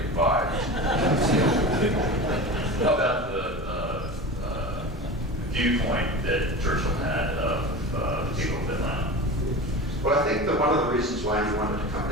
imbibed. How about the viewpoint that Churchill had of the people of Atlanta? Well, I think that one of the reasons why he wanted to come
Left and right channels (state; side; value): normal; both; correlation 0.31